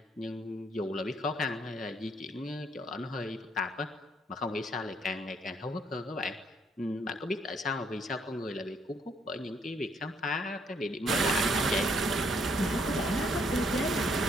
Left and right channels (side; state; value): both; normal; correlation 0.69